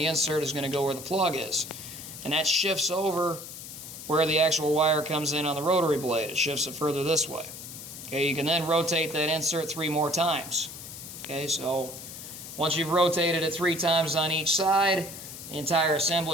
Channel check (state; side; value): noise; left; hiss, 12 dB below the sound